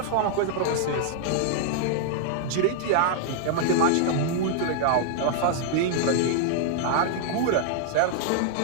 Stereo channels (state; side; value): different; both; correlation -0.01